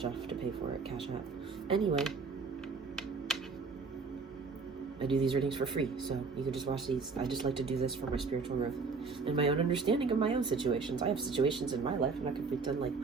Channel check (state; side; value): quieter; left; 4.7 dB